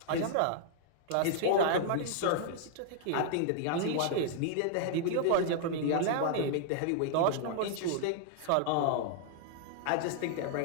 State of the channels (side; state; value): both; different; correlation -0.01